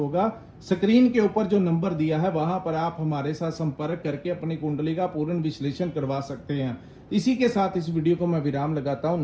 स्क्रीन के ऊपर जो नंबर दिया है वहां पर आप हमारे साथ संपर्क करके अपनी कुंडली का पूर्ण विश्लेषण करवा सकते हैं। इसी के साथ इस वीडियो को मैं विराम लगाता हूं।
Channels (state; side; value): identical; both; correlation 1.00